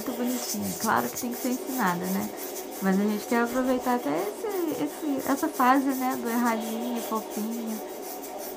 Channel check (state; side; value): identical; both; correlation 1.00